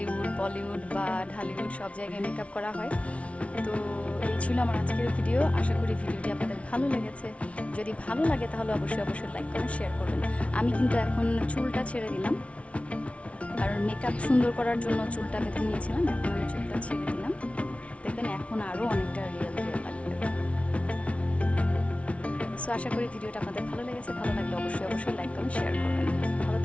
বলিউড বা ঢালিউড সব জায়গায় মেকআপ করা হয়। তো এই ছিল আমার আজকের ভিডিও। আশা করি ভিডিওটি আপনাদের ভালো লেগেছে। যদি ভালো লাগে তাহলে অবশ্যই অবশ্যই লাইক কমেন্ট শেয়ার করবেন। আমি কিন্তু এখন চুলটা ছেড়ে দিলাম, কারণ মেকআপ সুন্দর করার জন্য চুলটা বেঁধে নিয়েছিলাম, এখন আমি চুলটা ছেড়ে দিলাম। দেখবেন এখন আরও অনেকটা রিয়েল রিয়েল লাগবে। সো আশা করি ভিডিওটা আপনাদের ভালো লেগেছে। ভালো লাগলে অবশ্যই অবশ্যই লাইক কমেন্ট শেয়ার করবেন। ভালো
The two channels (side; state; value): right; late; 0.063 ms